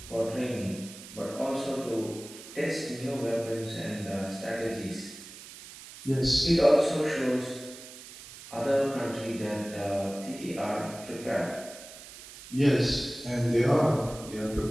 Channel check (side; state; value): right; noise; hiss, 15 dB below the sound